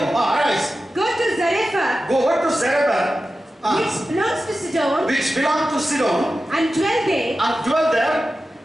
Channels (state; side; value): normal; both; correlation 0.93